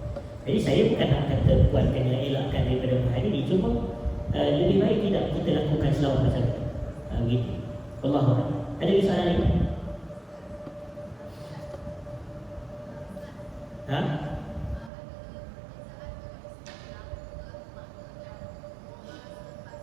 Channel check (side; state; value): left; drops out; at 14.9 s